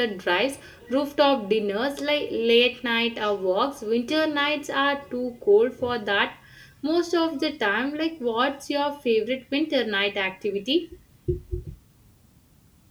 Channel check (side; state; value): both; identical; correlation 1.00